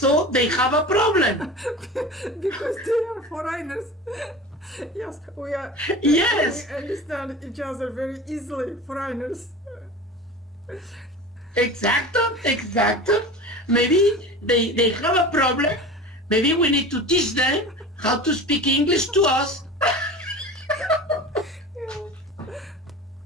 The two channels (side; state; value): both; normal; correlation 0.34